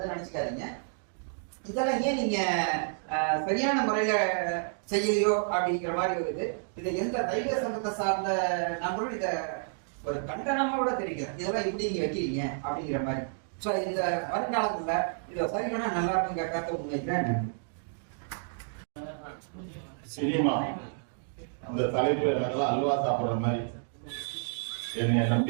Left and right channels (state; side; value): silent; left; digital silence